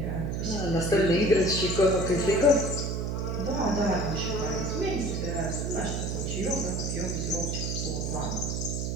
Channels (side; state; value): right; noise; hum, 1 dB below the sound